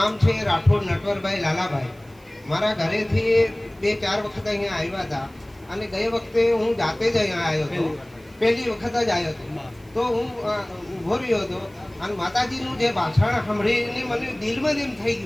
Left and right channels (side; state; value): right; noise; hiss, 30 dB below the sound